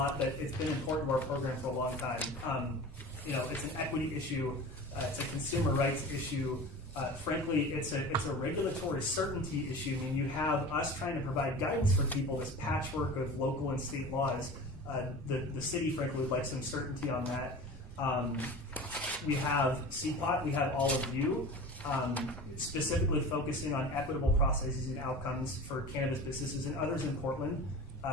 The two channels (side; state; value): both; normal; correlation 0.35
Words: but it's been important to our program for a long time. It's an equity issue. It's a consumer rights issue. Frankly, it's a regulatory certainty issue. I mean, you have us trying to provide guidance for people, this patchwork of local and state laws. The city, frankly, would like some certainty on that. We have CPOT. We have all of you. Specifically focusing on equitable processes and outcomes for cannabis businesses and others in Portland.